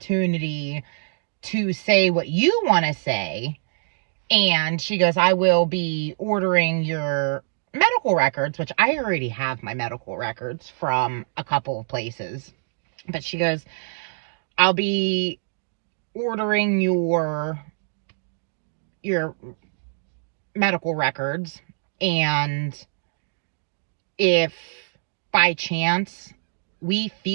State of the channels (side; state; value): left; silent; digital silence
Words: to say what you want to say. And she goes, I will be ordering your medical records, which I already have my medical records from a couple of places. But she goes, I'll be ordering your medical records. And if by chance we